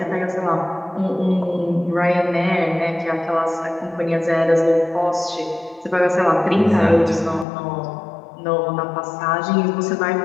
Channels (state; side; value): drops out; right; at 7.5 s